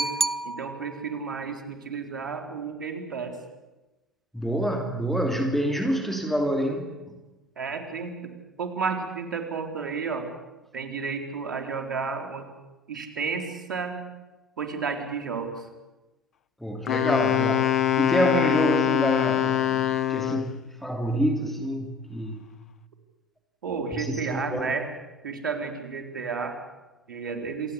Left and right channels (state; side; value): normal; both; correlation 0.50